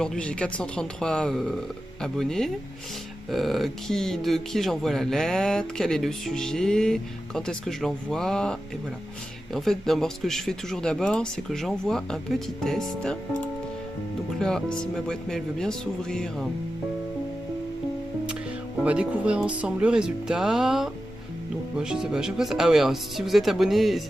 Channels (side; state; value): both; normal; correlation 0.92